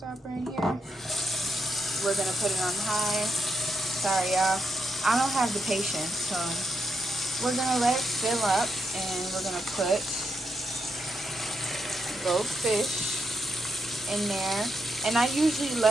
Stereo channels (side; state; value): both; normal; correlation 0.81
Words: in here. We're gonna put it on high. Sorry y'all, I don't have the patience, so we're gonna let it fill up, and we're gonna put both fish in there. And I usually